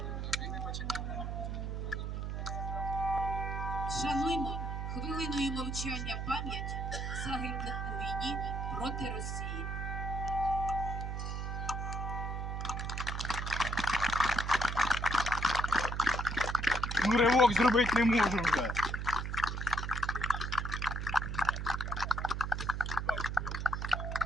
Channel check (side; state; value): right; noise; hum, 3 dB below the sound